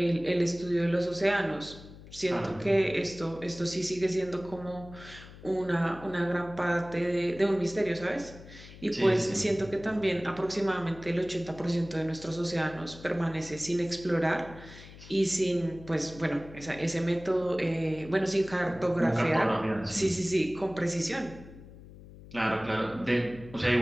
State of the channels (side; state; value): left; noise; hum, 18 dB below the sound